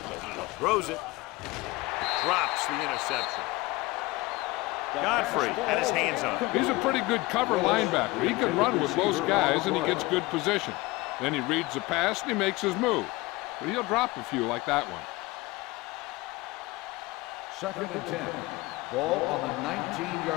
Throws it. drops the interception. Godfrey had his hands on it. He's a pretty good cover linebacker. He can run with those guys, and he gets good position. Then he reads the pass, and he makes his move. But he'll drop a few like that one. 2nd and 10. Ball on the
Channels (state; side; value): quieter; right; 21.4 dB